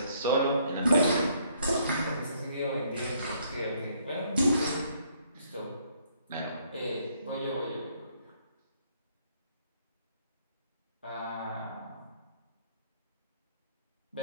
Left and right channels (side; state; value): both; inverted; correlation -0.67